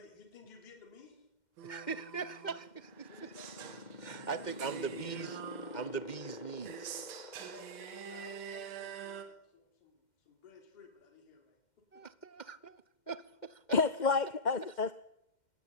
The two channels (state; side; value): late; right; 2.1 ms